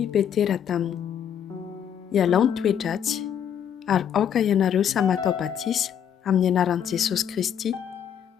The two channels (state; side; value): quieter; right; 8.8 dB